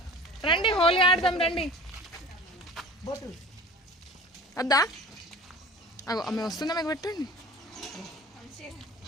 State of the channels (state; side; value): normal; both; correlation 0.40